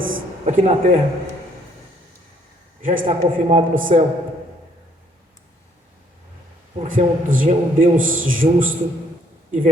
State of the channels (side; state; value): both; normal; correlation 0.65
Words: aqui na terra, já está confirmado no céu, porque é um Deus justo e